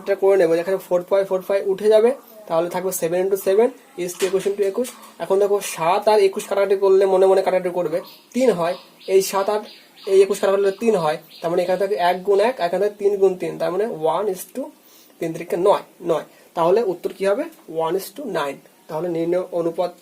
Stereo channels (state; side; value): identical; both; correlation 1.00